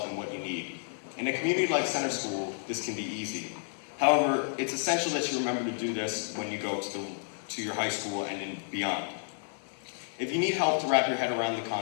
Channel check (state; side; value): silent; right; digital silence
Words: and what you need. In a community like center school, this can be easy. However, it's essential that you remember to do this when you go to your high school and beyond. If you need help to wrap your head around the